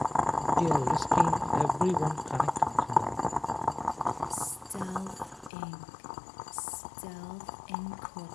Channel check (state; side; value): drops out; right; at 5.5 s